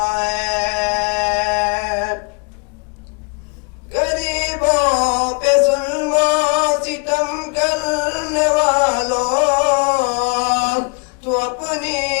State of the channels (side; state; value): right; quieter; 34.9 dB